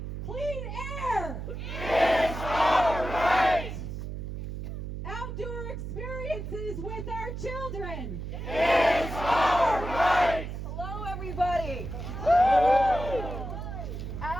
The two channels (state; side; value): noise; right; hum, 6 dB below the sound